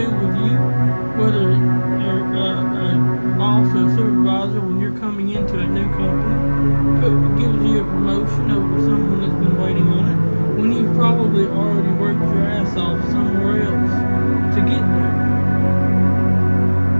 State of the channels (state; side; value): inverted; both; correlation -1.00